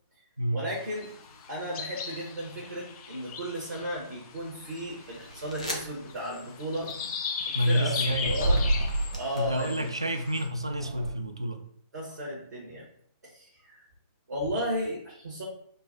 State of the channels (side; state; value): both; inverted; correlation -0.65